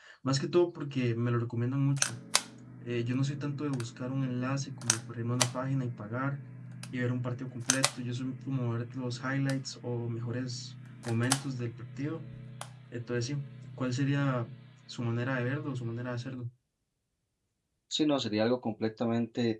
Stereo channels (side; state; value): both; identical; correlation 1.00